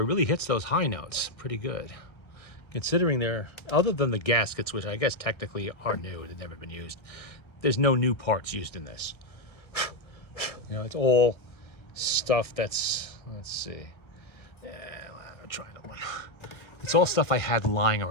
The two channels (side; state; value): right; late; 1.3 ms